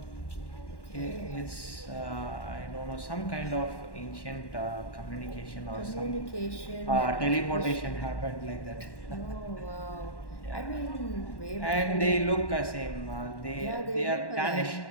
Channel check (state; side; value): late; right; 1.1 ms